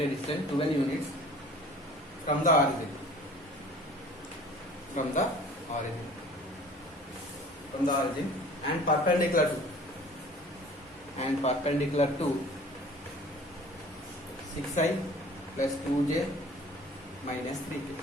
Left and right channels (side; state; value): both; normal; correlation 0.48